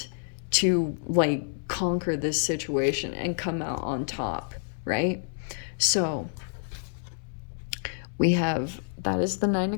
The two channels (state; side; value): silent; right; 59 dB below the other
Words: to, like, conquer this situation and come out on top, right? So, we have, that is the Nine